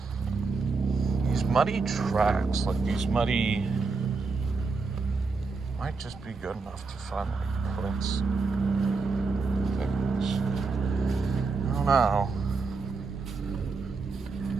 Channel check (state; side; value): quieter; left; 4.3 dB